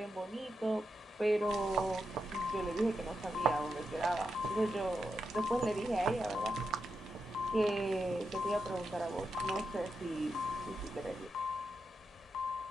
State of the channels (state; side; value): normal; both; correlation 0.86